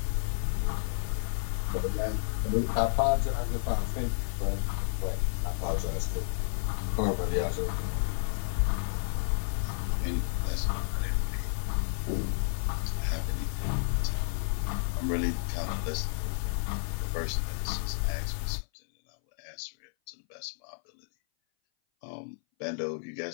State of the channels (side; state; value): right; silent; 57 dB below the other